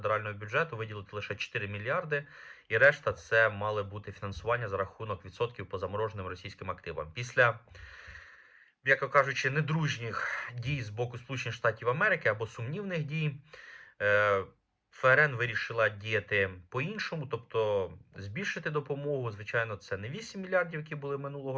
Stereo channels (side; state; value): both; identical; correlation 1.00